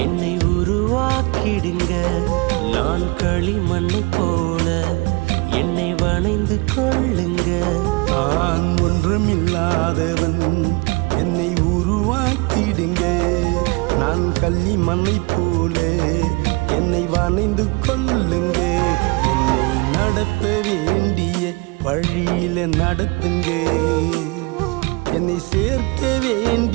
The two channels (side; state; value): left; quieter; 27.2 dB